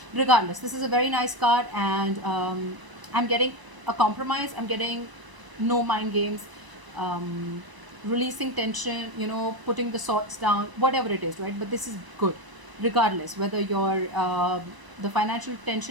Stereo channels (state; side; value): late; left; 1.0 ms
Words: regardless, this is a very nice card, and I'm getting a compromise. I'm getting no mind games, um, releasing tension, putting the swords down, whatever it is, right? But this is good regardless whether the financial